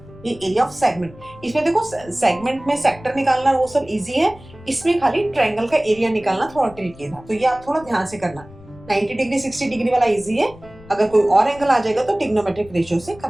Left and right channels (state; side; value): noise; left; rumble, 21 dB below the sound